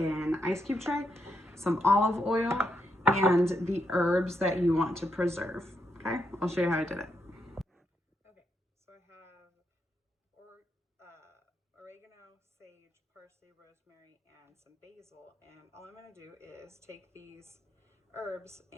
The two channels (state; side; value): normal; both; correlation 0.80